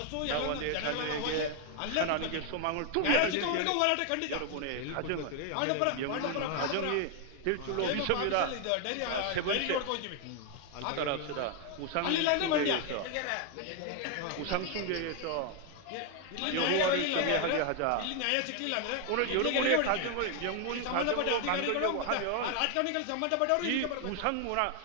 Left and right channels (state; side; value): different; both; correlation 0.00